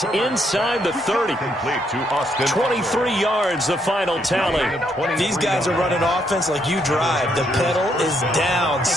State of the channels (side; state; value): both; normal; correlation 0.74